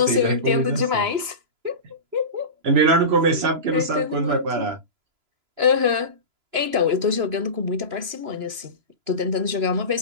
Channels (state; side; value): late; left; 3.0 ms